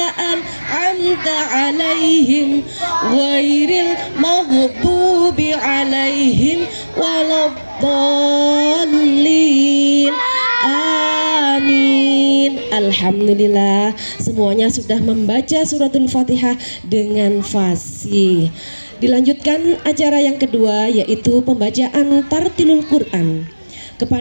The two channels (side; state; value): both; inverted; correlation -1.00